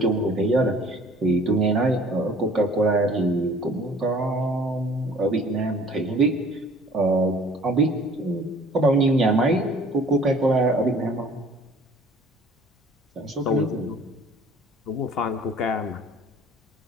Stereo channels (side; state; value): both; normal; correlation 0.51